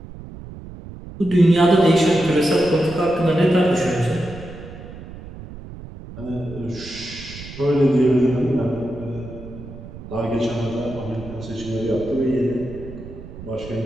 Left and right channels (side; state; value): right; noise; rumble, 14 dB below the sound